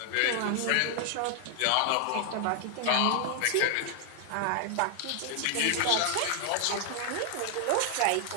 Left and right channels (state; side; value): different; both; correlation 0.00